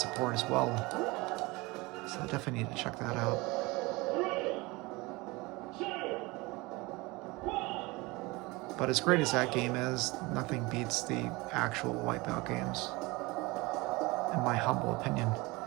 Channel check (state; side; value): quieter; left; 23.5 dB